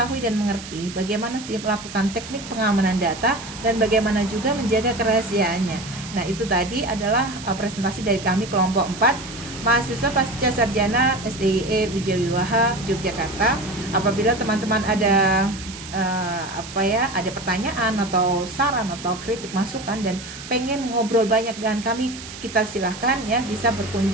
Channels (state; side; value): noise; right; hiss, 13 dB below the sound